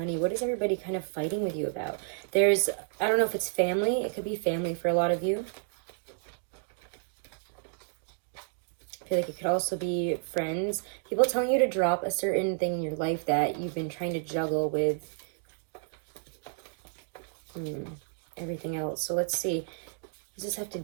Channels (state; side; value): silent; left; digital silence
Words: What is everybody kind of fighting with you about? I don't know if it's family. It could be family for a lot of you. I feel like it could also be friends. People telling you to drop a certain thing in your life that you've been trying to juggle with everything else. So let's see. What does this have to